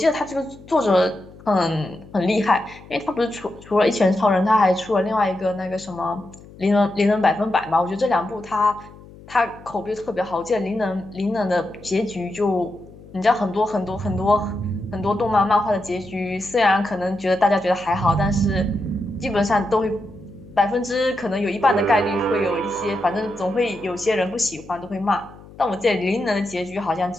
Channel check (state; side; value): noise; left; hum, 20 dB below the sound